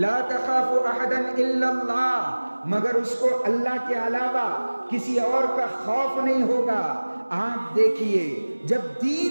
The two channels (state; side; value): inverted; both; correlation -1.00